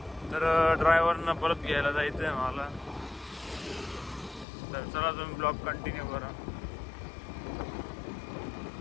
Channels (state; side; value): drops out; right; at 4.5 s